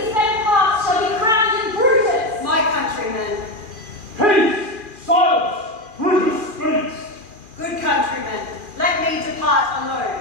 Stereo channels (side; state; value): left; late; 2.4 ms